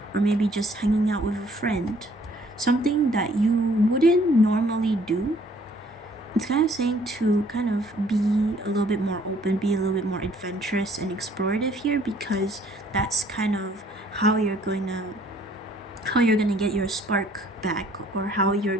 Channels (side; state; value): both; normal; correlation 0.60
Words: or maybe just hanging out with a friend, something that you wouldn't normally do, it's kind of saying to kind of be a little bit more open, be a little bit more adventurous and explorative here, because that's kind of how you're going to get your spark back, or how you're